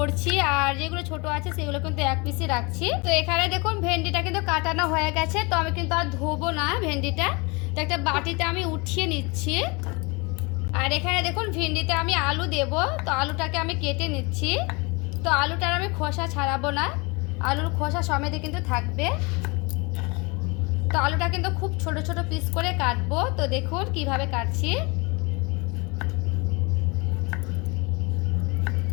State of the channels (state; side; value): quieter; right; 28.0 dB